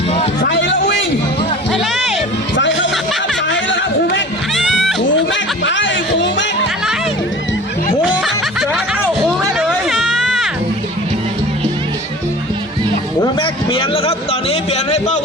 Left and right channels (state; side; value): normal; both; correlation 0.40